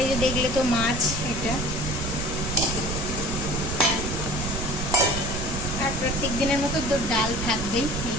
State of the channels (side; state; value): right; noise; rumble, 4 dB below the sound